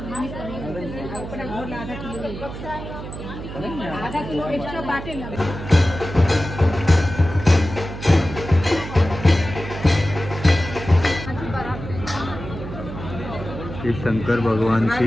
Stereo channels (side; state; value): right; noise; hum, 9 dB below the sound